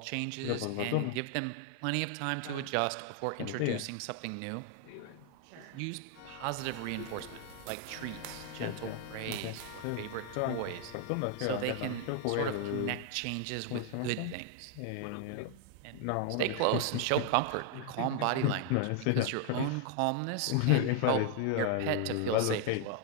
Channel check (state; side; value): different; both; correlation 0.00